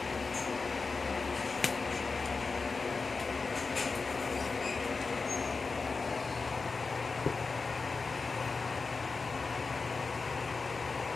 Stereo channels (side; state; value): right; quieter; 4.3 dB